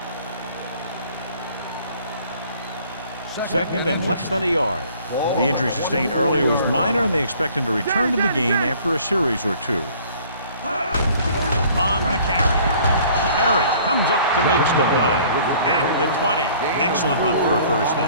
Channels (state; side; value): inverted; both; correlation -0.54